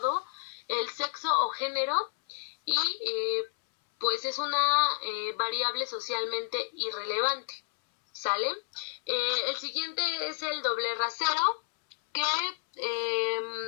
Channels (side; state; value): right; silent; 58 dB below the other